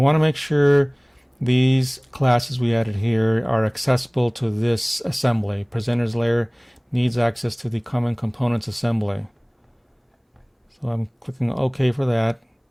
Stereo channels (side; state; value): both; identical; correlation 1.00